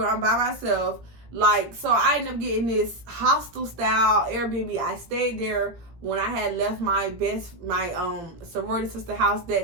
I'm by myself. Like, so I ended up getting this hostel style Airbnb. I stayed there when I had left my sorority sister house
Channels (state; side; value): late; left; 17 ms